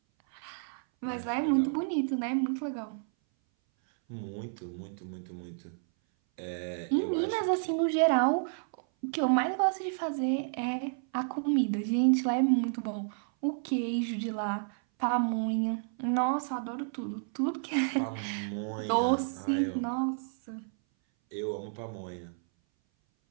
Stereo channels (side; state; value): left; silent; 57 dB below the other